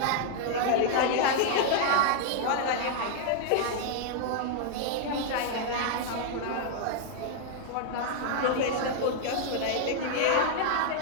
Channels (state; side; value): different; both; correlation -0.01